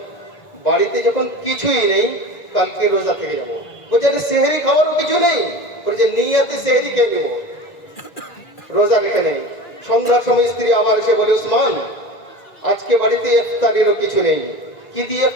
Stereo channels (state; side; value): late; right; 2.4 ms